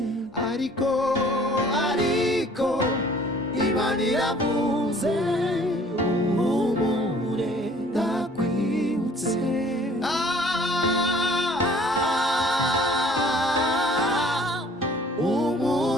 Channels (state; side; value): normal; both; correlation 0.54